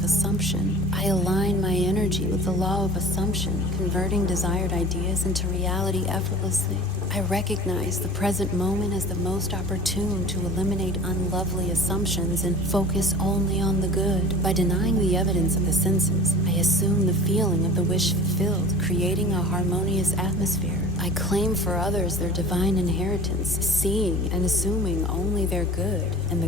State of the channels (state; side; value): normal; both; correlation 0.41